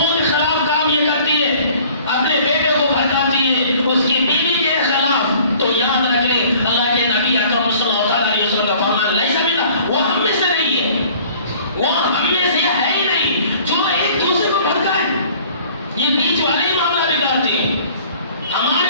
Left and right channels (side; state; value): both; inverted; correlation -0.52